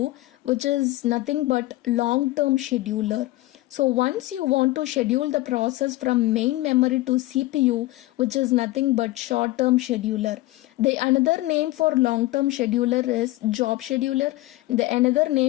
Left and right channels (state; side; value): quieter; right; 18.2 dB